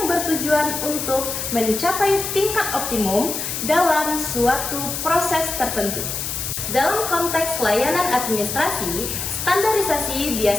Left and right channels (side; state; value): left; noise; hiss, 4 dB below the sound